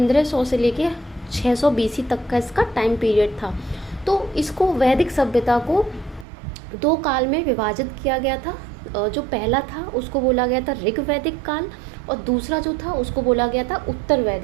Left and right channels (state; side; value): drops out; left; at 6.2 s